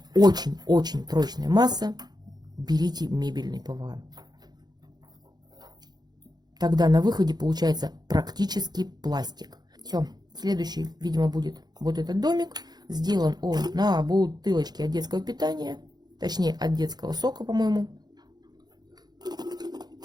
очень-очень прочная масса, берите мебельный ПВА. Тогда на выходе получается практически пластик. Все, следующий, видимо, будет вот этот домик. Сделан он на бутылочке от детского питания, точнее от детского сока, по-моему.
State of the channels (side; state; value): left; late; 0.20 ms